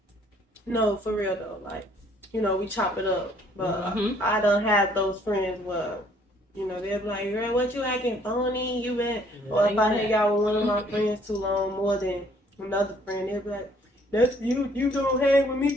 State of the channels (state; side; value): normal; both; correlation 0.62